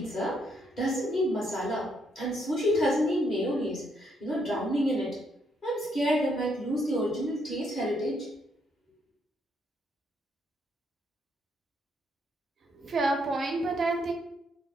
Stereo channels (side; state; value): both; normal; correlation 0.74